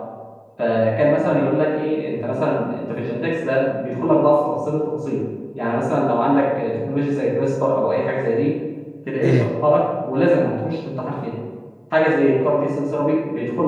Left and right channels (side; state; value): both; identical; correlation 1.00